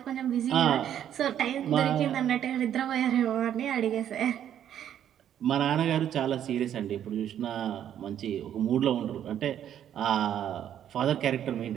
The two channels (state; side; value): quieter; left; 10.2 dB